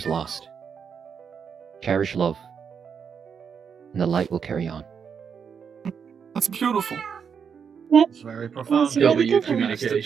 lost, cherish love, and the light will carry on. That's beautiful. It's very profound. That's really W good. Has to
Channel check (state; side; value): quieter; left; 6.8 dB